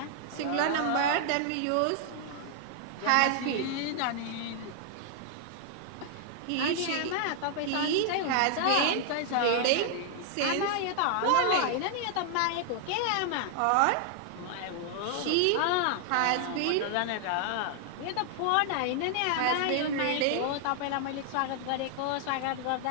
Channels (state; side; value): different; both; correlation 0.00